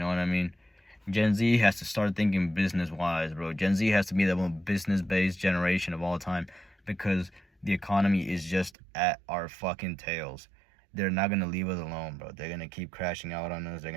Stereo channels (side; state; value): left; drops out; at 8.7 s